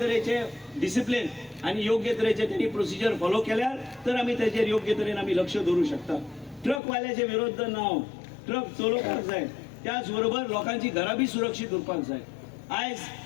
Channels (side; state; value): right; drops out; at 6.8 s